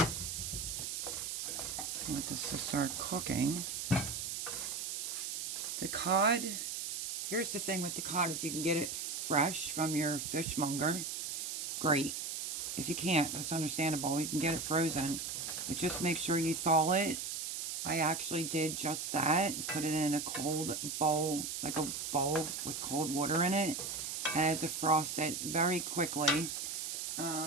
I want this to start cooking. The cod, here's the thing with the cod, if you can get it fresh from your fishmonger, great. If you can't, that's understandable. You can get it frozen, but just make sure you thaw it. I actually did just that, put it in a cold bowl, like a bowl with cold water in it, and I had to defrost it very quickly.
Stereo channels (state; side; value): noise; right; hiss, 3 dB below the sound